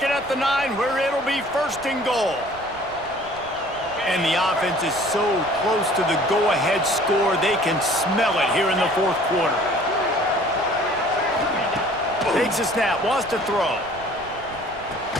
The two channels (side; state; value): right; noise; rumble, 21 dB below the sound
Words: it at the 9 where it'll be first and goal. And the offense is so close to the go-ahead score, they can smell it here in the fourth quarter. Takes a snap, wants to throw.